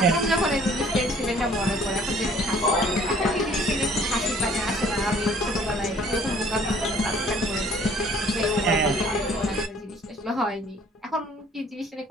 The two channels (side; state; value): both; normal; correlation 0.56